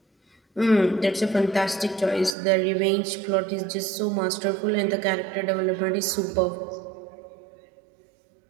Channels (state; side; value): drops out; left; at 2.4 s